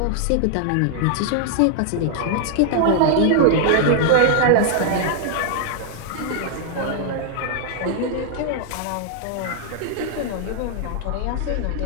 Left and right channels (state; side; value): different; both; correlation 0.00